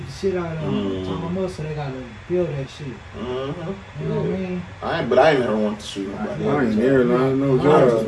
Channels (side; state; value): both; identical; correlation 1.00